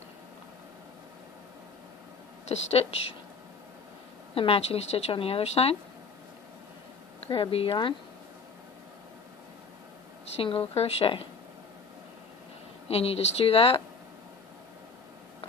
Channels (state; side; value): quieter; right; 4.7 dB